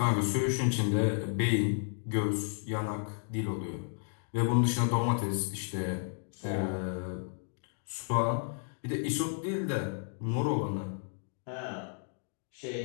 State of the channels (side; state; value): right; silent; 56 dB below the other